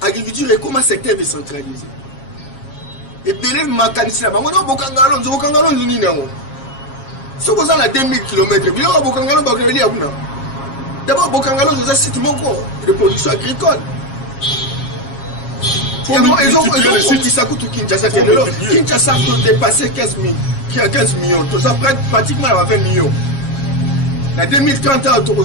agriculture est comme un secteur décentralisé et belé makanisi la bango na bokangalo nzuni nango so ko za 2000 km bilo bokangalo ba ko li abuna d'abord bokangalo c'est site moko de production agricole. Ils ont dit ça coûte Kinshasa peut dépasser 15 millions. Tout ça pratiquement 20 millions. En 2030, on a 30 ou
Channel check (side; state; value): right; late; 7.3 ms